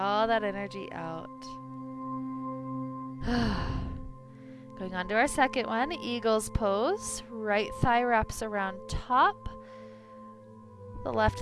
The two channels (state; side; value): identical; both; correlation 1.00